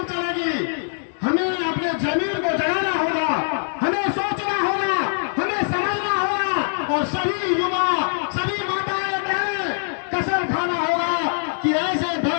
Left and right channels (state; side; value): silent; right; digital silence